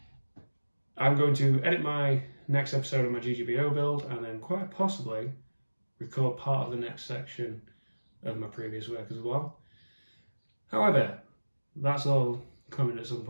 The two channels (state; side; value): inverted; both; correlation -1.00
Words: I'm going to edit my next episode of my GGBO build and then quite possibly record part of the next section of my previous work as well. However, that's all coming at some